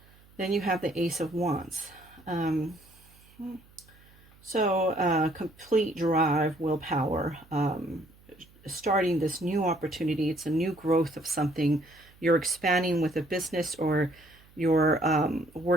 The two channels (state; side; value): noise; right; hum, 27 dB below the sound